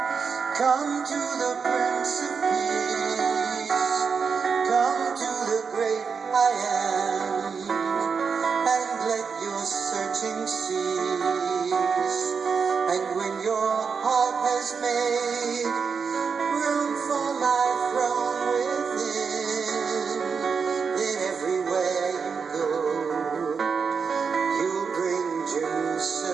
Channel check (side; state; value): left; quieter; 5.7 dB